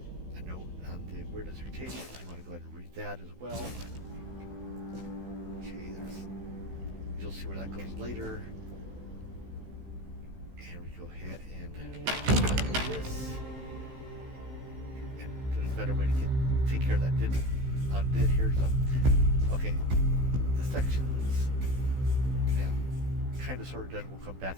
a note on the weirdness mutation. You want to go ahead and read that as well. Okay, you'll see where that goes later. And we go ahead and do this. And there's a better way to take care of that undid here. So, okay, the sections, yeah, kind of sort of done. We'll come back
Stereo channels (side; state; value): left; late; 16 ms